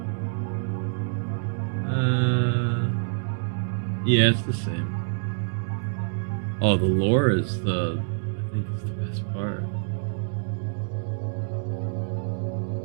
Yeah, it's the same. Oh, the lore is I think it's the best part.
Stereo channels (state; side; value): silent; left; digital silence